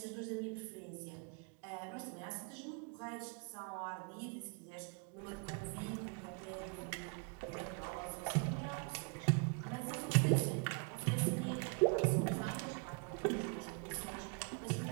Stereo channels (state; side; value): quieter; left; 36.9 dB